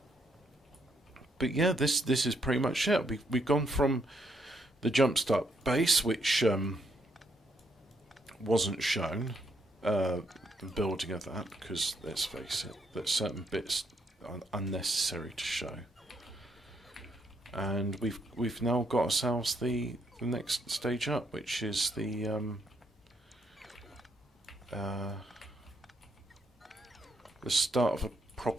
But yeah, this is pretty much it. We've gone from the jumpstart base, which wasn't shown, the building of that, because let's face it, there's certain bits unnecessary to show. And we've now got ourselves the next stage up, which is the start of a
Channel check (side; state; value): both; normal; correlation 0.74